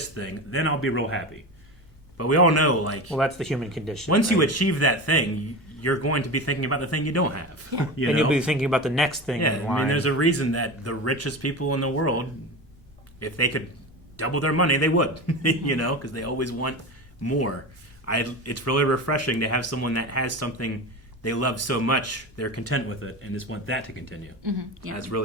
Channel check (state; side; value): normal; both; correlation 0.26